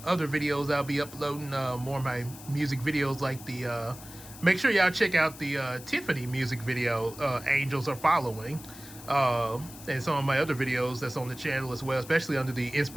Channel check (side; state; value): left; noise; hiss, 16 dB below the sound